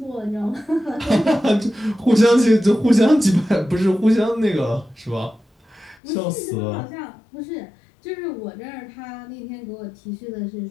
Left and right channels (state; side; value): drops out; right; at 6.0 s